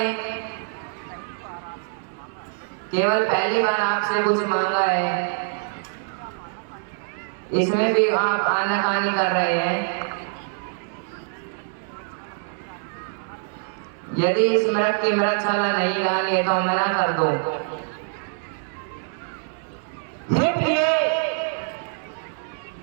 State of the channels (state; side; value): silent; left; 60 dB below the other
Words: केवल पहली बार आपसे कुछ मांगा है, इसमें भी आप आनाकानी कर रहे हैं। यदि इस मृग की मृगशाला नहीं डाली है तो मना कर दो। हे प्रिय,